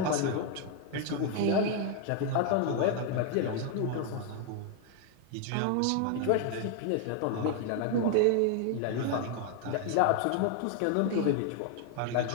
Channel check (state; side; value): different; both; correlation 0.00